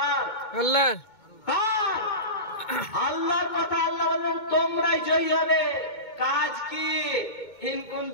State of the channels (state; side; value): late; right; 2.2 ms